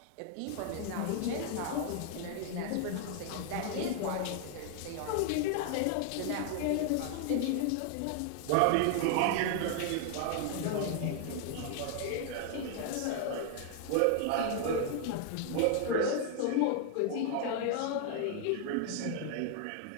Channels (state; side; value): different; both; correlation 0.00